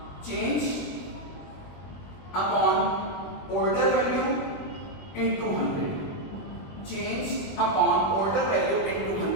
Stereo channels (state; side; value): late; right; 21 ms